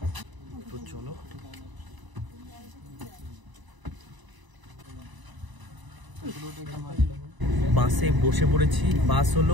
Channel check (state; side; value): late; left; 1.0 ms